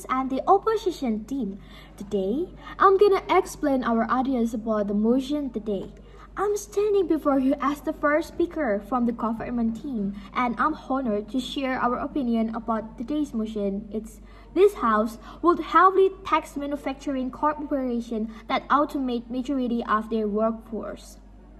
and the opposition team. Today, I'm gonna explain our audience about the motion today. I'm standing before you as the first speaker from the government team, and I'm honored to share our opinion about today's motion. This house would heavily tax manufacturing corporations that automate majority of their workforce.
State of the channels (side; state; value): both; identical; correlation 1.00